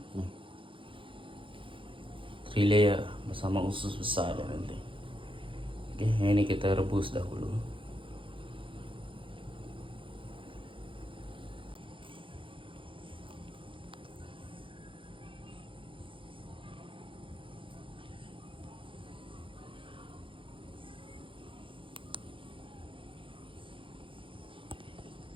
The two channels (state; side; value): late; left; 0.25 ms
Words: layer bersama usus besar dan nanti. Oke, ini kita rebus dahulu.